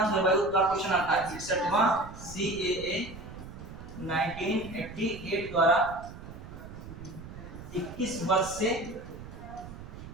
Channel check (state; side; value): noise; right; rumble, 13 dB below the sound